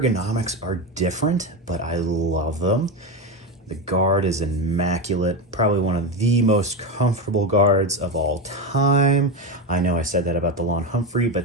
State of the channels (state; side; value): normal; both; correlation 0.15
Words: are different, but I love them. The guard is immaculate, probably one of the most comfortable guards of all time. I know I said that about the Lawn Humphrey,